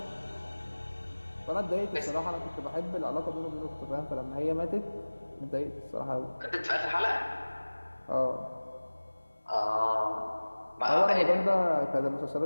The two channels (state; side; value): inverted; both; correlation -1.00